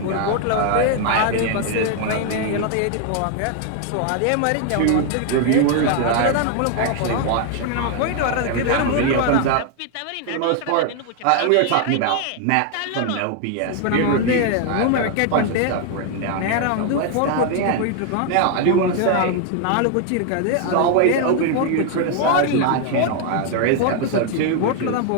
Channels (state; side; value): different; both; correlation 0.00